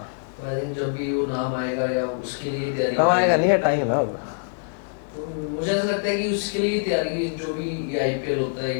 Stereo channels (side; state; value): right; silent; digital silence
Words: तो आई थिंक जब भी वो नाम आएगा या उसके लिए तैयारी आएगा करेंगे, नहीं, टाइम है अब। तो मुझे ऐसा लगता है कि उसके लिए तैयारी, जो भी आईपीएल होता है